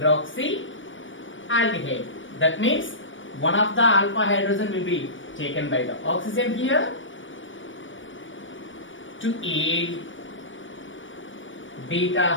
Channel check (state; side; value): late; right; 0.56 ms